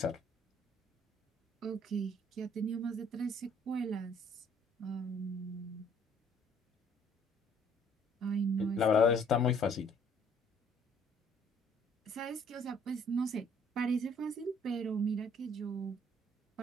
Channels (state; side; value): normal; both; correlation 0.60